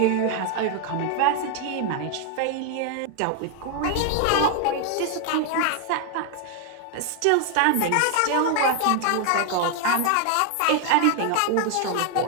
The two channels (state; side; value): different; both; correlation 0.00